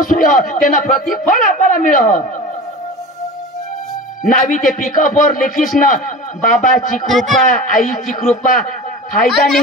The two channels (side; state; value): both; normal; correlation 0.34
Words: हुआ तेना प्रतिफळ आपल्याला मिळ नावी ते पिकअप वर लिखीस ना बाबाची कृपा आईची कृपा फायदा